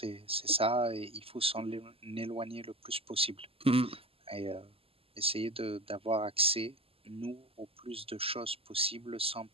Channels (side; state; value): left; late; 0.28 ms